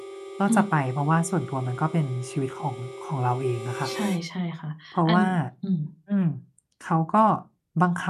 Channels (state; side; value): identical; both; correlation 1.00